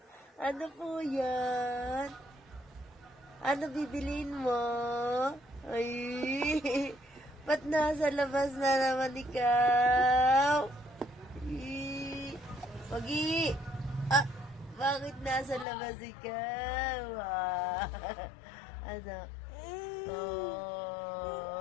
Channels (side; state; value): right; drops out; at 15.7 s